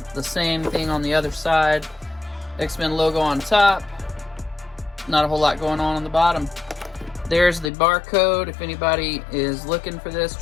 the same thing on the other side. X-Men logo on top, not a whole lot going on the bottom. There's the barcode. If anybody is looking for this,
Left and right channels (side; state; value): right; drops out; at 7.7 s